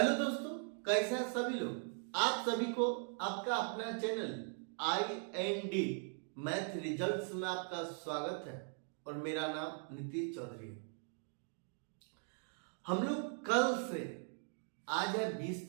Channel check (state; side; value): silent; left; 51 dB below the other